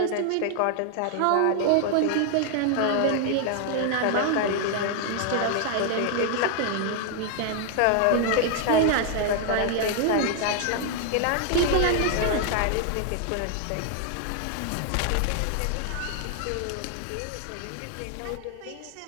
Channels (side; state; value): both; different; correlation 0.00